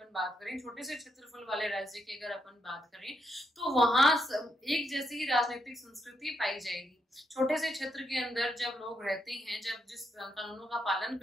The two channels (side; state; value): both; normal; correlation 0.79